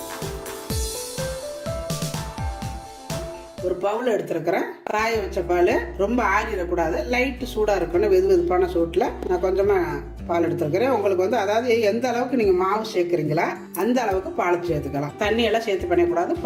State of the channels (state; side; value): identical; both; correlation 1.00